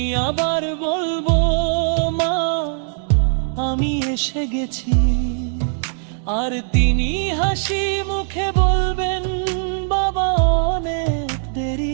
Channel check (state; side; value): silent; left; digital silence